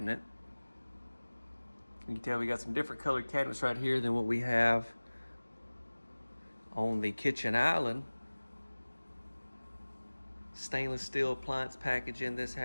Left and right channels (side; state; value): both; inverted; correlation -1.00